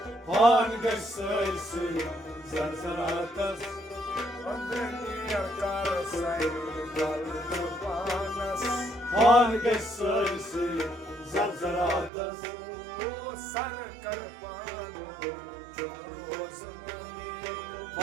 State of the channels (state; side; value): drops out; left; at 12.1 s